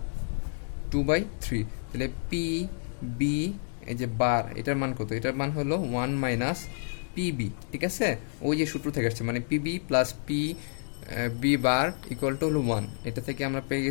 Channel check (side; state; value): right; silent; digital silence